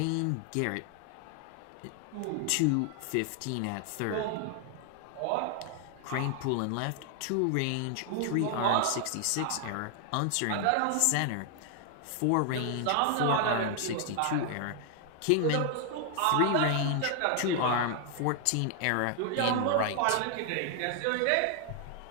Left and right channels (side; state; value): both; different; correlation 0.00